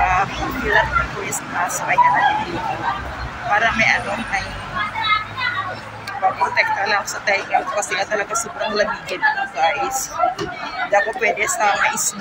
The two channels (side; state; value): both; identical; correlation 1.00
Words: pilat na Christmas. So, ayan na din ko. Para may may protekta lang sa tainga kasi nga talaga sobrang lamigin ko, guys. Hindi ako pwede sa may